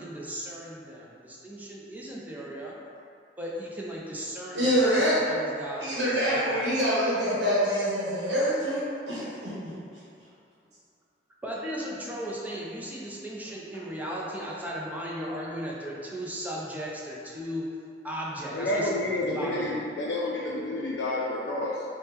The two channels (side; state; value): both; normal; correlation 0.19